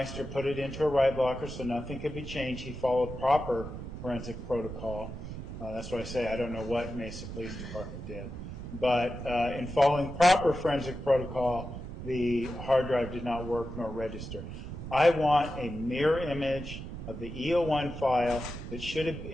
put it into a write blocker so nothing could be changed. He followed proper forensic protocol. That's why I say I don't know what Mesa Police Department did. But in following proper forensic protocol, the hard drive did not work nor register. I want a mirror image of the E01 file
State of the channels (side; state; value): right; noise; rumble, 9 dB below the sound